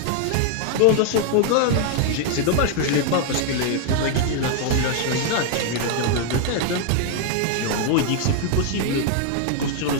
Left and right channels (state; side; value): different; both; correlation 0.00